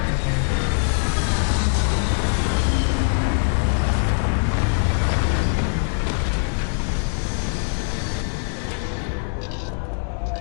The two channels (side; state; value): right; silent; digital silence